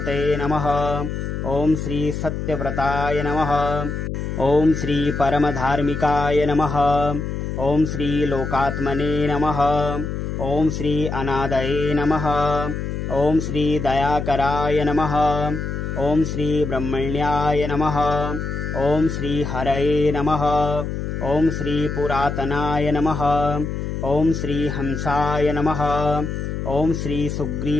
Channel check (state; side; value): noise; left; hum, 4 dB below the sound